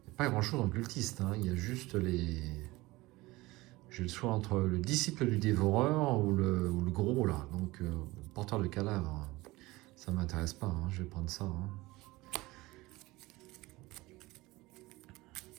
n'y a pas grand-chose en cultiste, hein. Il y a juste les... J'ai le choix entre le disciple du dévoreur ou le gros là. Donc Porteur de cadavre, ça m'intéresse pas, hein, je vais prendre ça. Hein.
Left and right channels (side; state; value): left; quieter; 20.5 dB